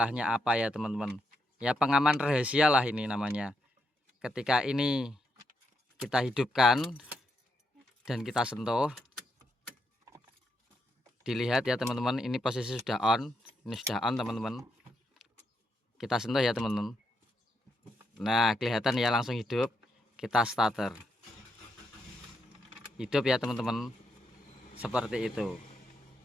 apa ya teman-teman? Ya pengaman rahasia lah ini namanya. Ketika ini kita hidupkan dan kita sentuh, dilihat ya teman-teman, ini posisi sudah on. Ini sudah on teman-teman. Kita sentuh ya teman-teman. Nah, kelihatan ya, langsung hidup. Kita starter. Hidup ya teman-teman. Seperti itu.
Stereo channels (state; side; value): normal; both; correlation 0.80